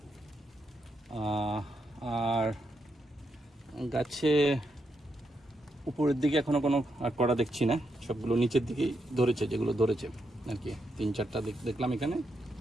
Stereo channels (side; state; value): both; normal; correlation 0.82